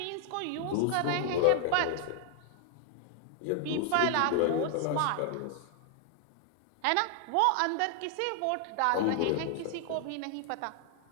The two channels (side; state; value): both; different; correlation 0.00